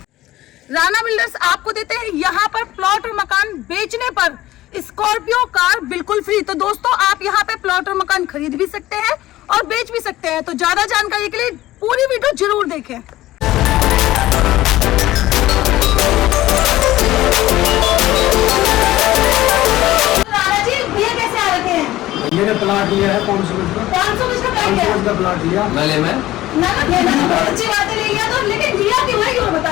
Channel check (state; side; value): quieter; right; 15.9 dB